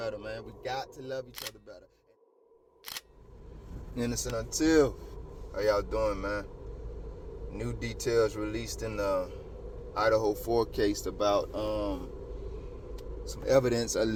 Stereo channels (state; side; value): identical; both; correlation 1.00